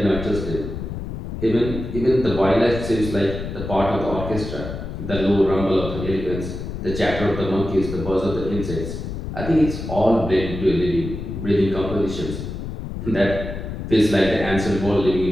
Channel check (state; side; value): noise; left; rumble, 7 dB below the sound